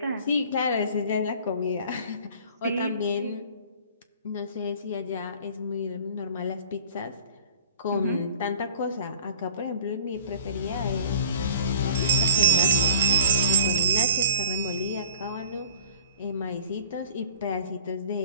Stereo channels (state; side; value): inverted; both; correlation -0.46